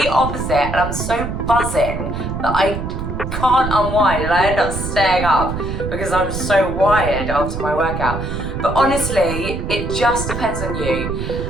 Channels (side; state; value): right; noise; rumble, 5 dB below the sound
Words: opposite and I'm so buzzing that I can't unwind and I end up staying up because I'm so wired after my workout. But honestly, it just depends on you.